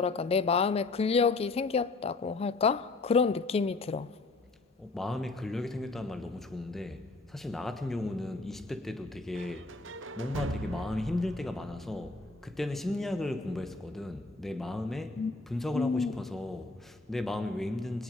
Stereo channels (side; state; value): right; quieter; 3.5 dB